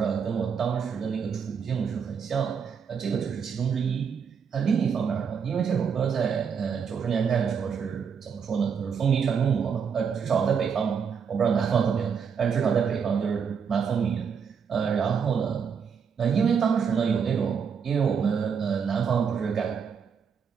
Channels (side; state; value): left; quieter; 6.6 dB